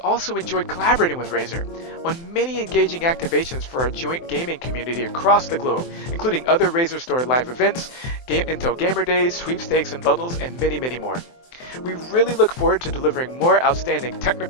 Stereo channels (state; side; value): late; right; 23 ms